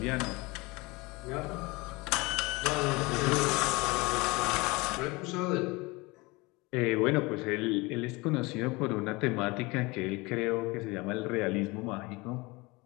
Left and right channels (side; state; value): right; quieter; 24.2 dB